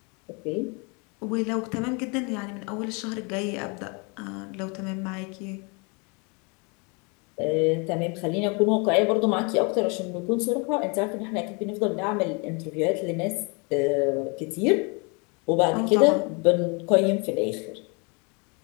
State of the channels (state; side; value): quieter; right; 32.2 dB